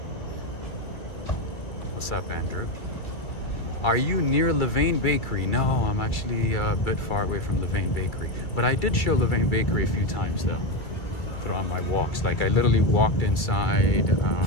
What's up, Andrew? Are you near Levain Bakery? No, I'm actually a bit far away from Levain Bakery. But I did show Levain Bakery a few times though, throughout my walks. Like I literally walked inside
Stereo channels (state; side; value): late; right; 2.3 ms